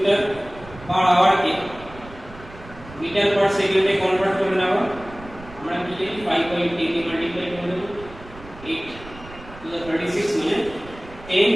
পার আওয়ার কে মিটার পার সেকেন্ডে কনভার্ট করে নেওয়া। আমরা কি লিখি 5.10 কে মাল্টিপ্লাই করে দেব 8 টু দ্য 36 মানে 10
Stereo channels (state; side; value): noise; right; rumble, 18 dB below the sound